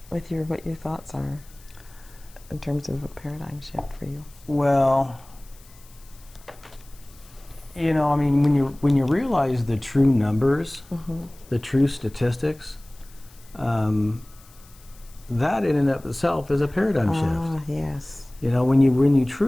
with what your thoughts are in terms of a paradigm shift for you? Well, you know, I mean, when you realize the true numbers, the true statistics, that in and of itself is a paradigm shift. Yes. You know, when you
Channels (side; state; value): left; noise; hiss, 25 dB below the sound